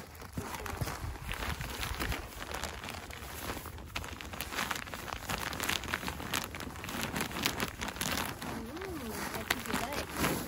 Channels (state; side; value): identical; both; correlation 1.00